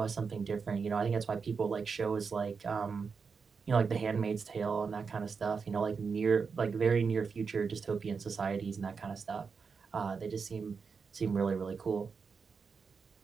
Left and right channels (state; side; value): quieter; left; 5.4 dB